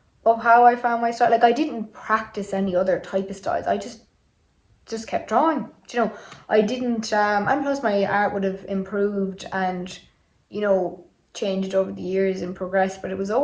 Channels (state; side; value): identical; both; correlation 1.00